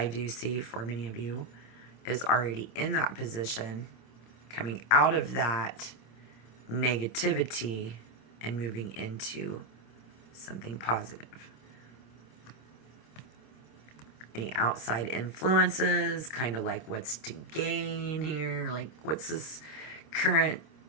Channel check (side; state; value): right; late; 26 ms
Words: do see for many of you, is already in that position, coming out of that negativity and moving into something positive. Any outside influences, kind of like what's to gain here, like what's this current,